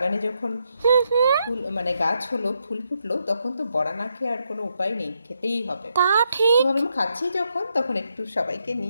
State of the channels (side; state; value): both; inverted; correlation -0.80